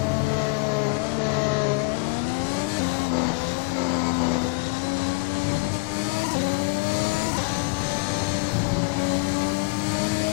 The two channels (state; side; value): quieter; right; 26.4 dB